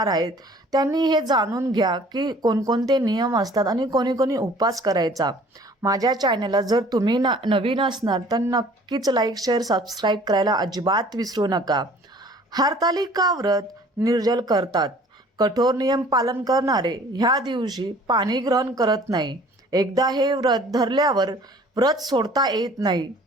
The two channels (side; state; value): both; normal; correlation 0.51